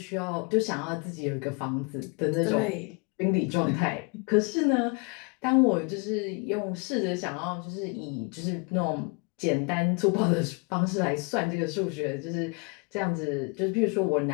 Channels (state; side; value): quieter; right; 32.5 dB